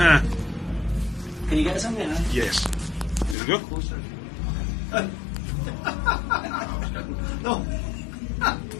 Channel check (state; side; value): drops out; right; at 3.4 s